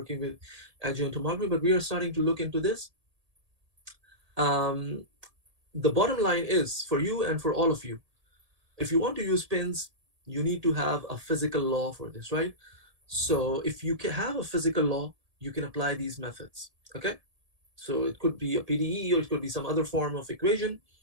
with adjoint tomography, but we are starting to look into this. um, the bottom line is for you and for all of you, if you want to use pins, you need to have a physical law for this, right? So if you can have a physical law, you can apply these methods. Okay. So it could be a PDE or it could be some other form of equation.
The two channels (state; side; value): late; left; 1.7 ms